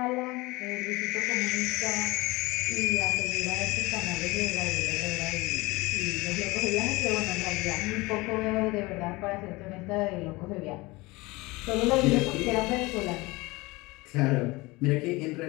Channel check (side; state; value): right; quieter; 22.5 dB